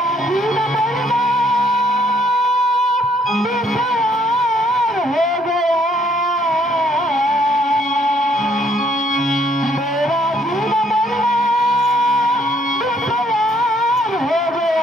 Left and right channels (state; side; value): normal; both; correlation 0.67